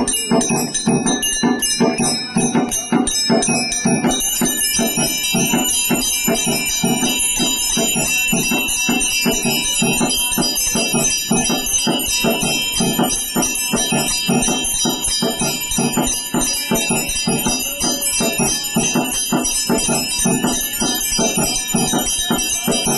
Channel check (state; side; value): identical; both; correlation 1.00